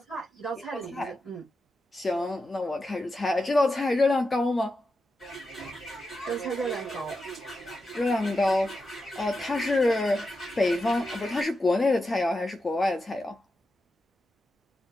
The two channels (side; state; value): both; normal; correlation 0.89